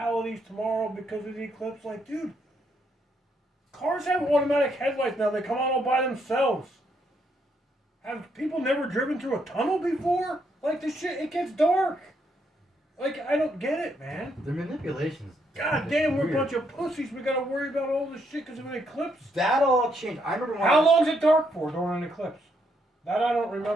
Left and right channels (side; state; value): both; normal; correlation 0.75